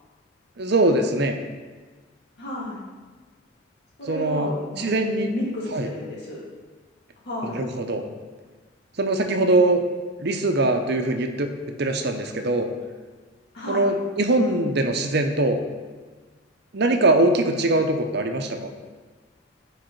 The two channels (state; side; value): normal; both; correlation 0.12